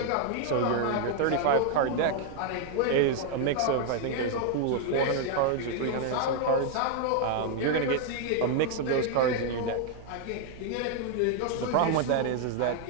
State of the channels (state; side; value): different; both; correlation 0.00